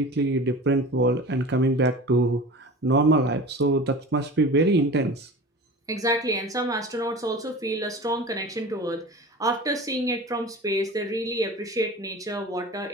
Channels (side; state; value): both; normal; correlation 0.36